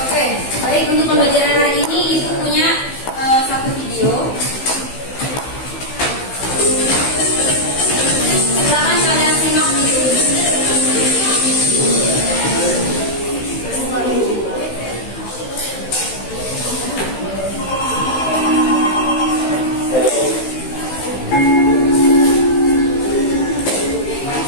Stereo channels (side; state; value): right; late; 15 ms